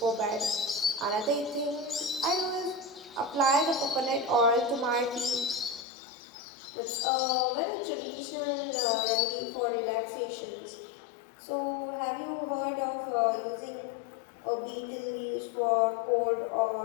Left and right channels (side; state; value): right; drops out; at 5.9 s